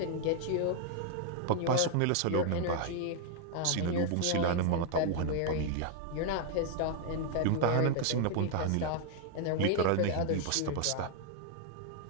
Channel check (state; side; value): different; both; correlation 0.00